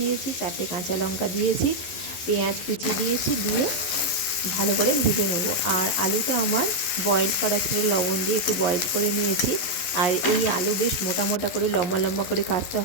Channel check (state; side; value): late; right; 11 ms